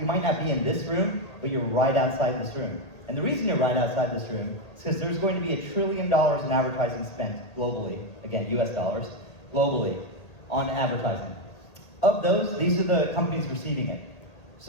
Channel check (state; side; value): late; right; 1.8 ms